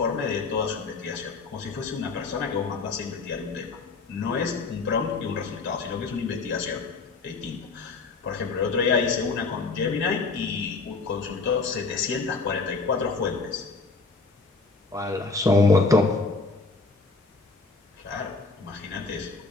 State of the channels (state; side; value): quieter; right; 4.1 dB